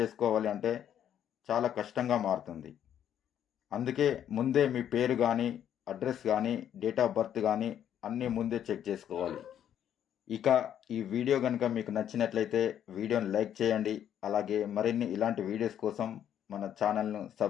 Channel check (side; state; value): right; quieter; 9.9 dB